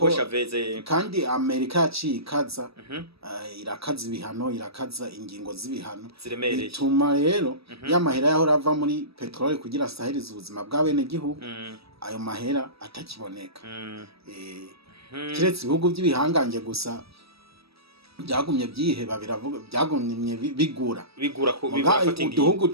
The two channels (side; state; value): left; late; 0.77 ms